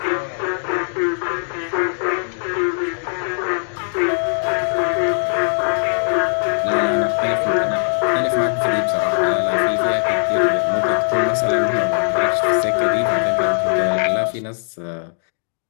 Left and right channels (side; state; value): right; silent; 60 dB below the other